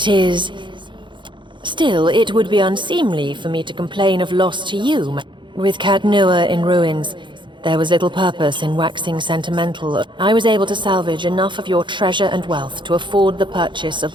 is... Still, it would be unseemly for me to complain of loss to you. With Cadnua in ruins, there was little purpose in waxing sentimental. I was able to salvage enough of your treasure and wealth to afford the purchase of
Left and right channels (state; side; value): late; left; 0.23 ms